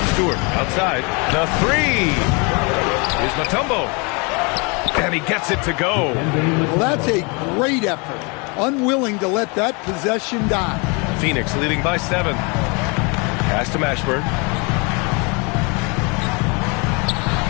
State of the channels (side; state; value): right; quieter; 31.1 dB